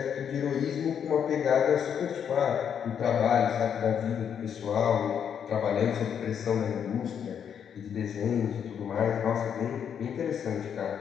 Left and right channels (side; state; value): right; quieter; 8.1 dB